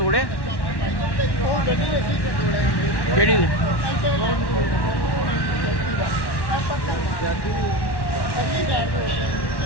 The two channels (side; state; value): right; late; 1.1 ms